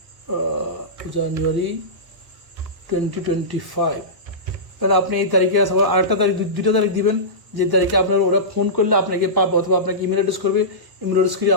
জানুয়ারি 2025। তাহলে আপনি এই তারিখে আবার আরেকটা তারিখ, দুইটা তারিখ দিবেন, যে তারিখে আপনার ওরা ফোন করলে আপনাকে পাবে, অথবা আপনাকে ইমেল অ্যাড্রেস করবে, ইমেল অ্যাড্রেস করে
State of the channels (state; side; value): late; left; 1.0 ms